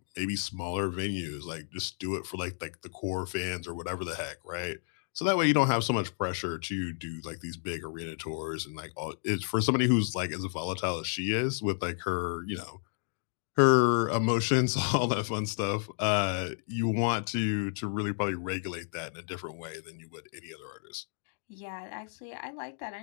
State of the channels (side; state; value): right; silent; digital silence